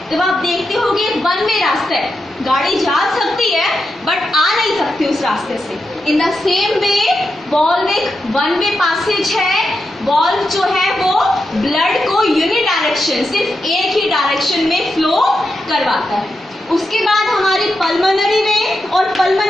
तब आप देखते हो कि वन वे रास्ता है, गाड़ी जा सकती है बट आ नहीं सकती उस रास्ते से। In the same way valve एक वन वे पैसेज है। वॉल्व जो है वो ब्लड को यूनिडायरेक्शन, सिर्फ एक ही डायरेक्शन में फ्लो करवाता है। उसके बाद हमारी पल्मोनरी वेन और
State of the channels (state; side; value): normal; both; correlation 0.87